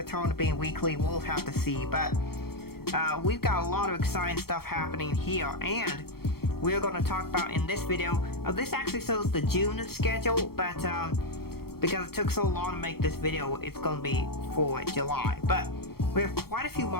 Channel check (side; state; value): right; late; 0.94 ms